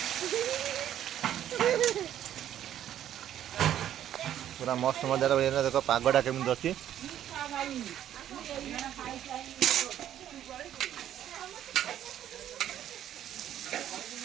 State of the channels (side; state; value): left; quieter; 11.1 dB